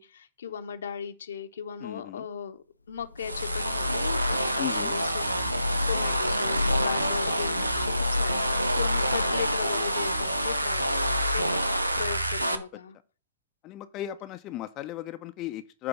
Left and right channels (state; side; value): inverted; both; correlation -0.81